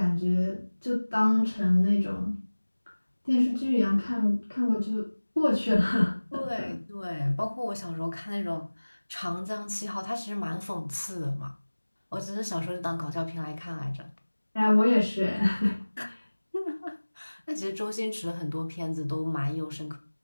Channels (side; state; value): both; inverted; correlation -1.00